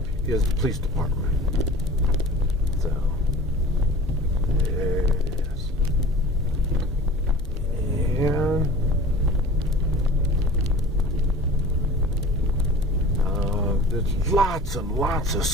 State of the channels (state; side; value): normal; both; correlation 0.40